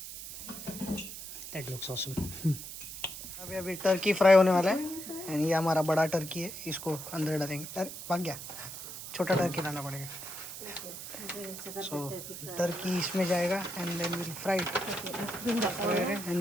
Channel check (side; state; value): right; noise; hiss, 10 dB below the sound